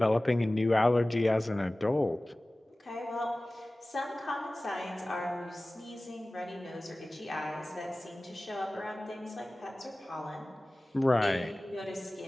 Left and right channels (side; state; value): both; normal; correlation 0.98